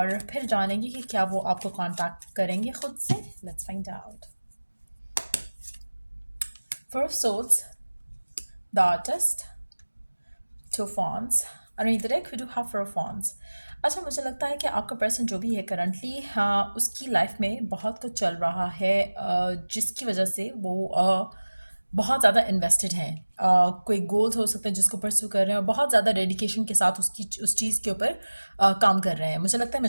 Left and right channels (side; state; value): both; inverted; correlation -1.00